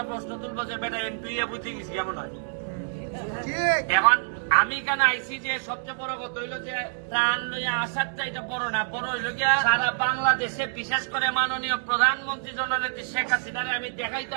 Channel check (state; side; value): silent; left; digital silence